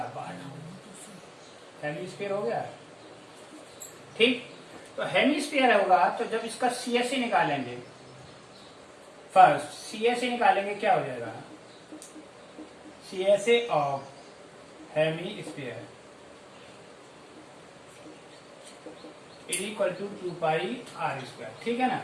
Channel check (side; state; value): both; identical; correlation 1.00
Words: पार्ट हेमी स्फीयर हो गया. ठीक. तो हेमी स्फीयर होगा तो जब इसका सीएसए निकालेंगे, फर्स्ट सीएसए निकालेंगे, क्या हो जाएगा CSA of hemisphere is equal to 2 pi R square. ठीक है ना.